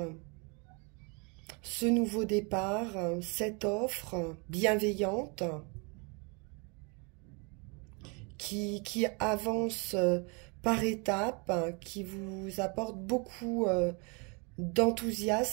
Ce nouveau départ, cette offre bienveillante qui avance par étapes, qui vous apporte beaucoup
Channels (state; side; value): quieter; left; 32.4 dB